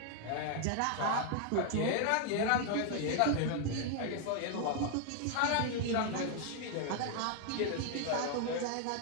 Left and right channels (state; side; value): different; both; correlation 0.00